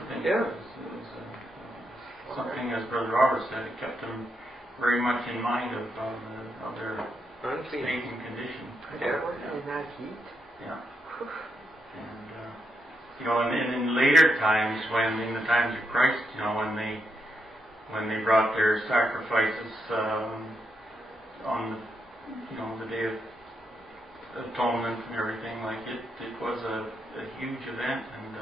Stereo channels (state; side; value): normal; both; correlation 0.82